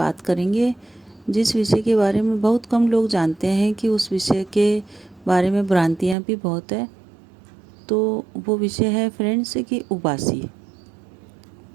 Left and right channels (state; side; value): drops out; left; at 6.2 s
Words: करेंगे जिस विषय के बारे में बहुत कम लोग जानते हैं कि उस विषय के बारे में भ्रांतियाँ भी बहुत है। तो वो विषय है फ्रेंड्स कि उबासी।